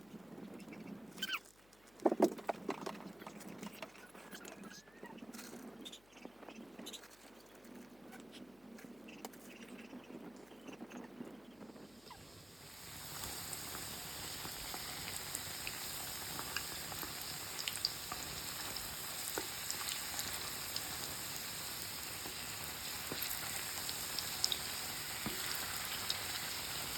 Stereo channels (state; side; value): noise; left; hum, 24 dB below the sound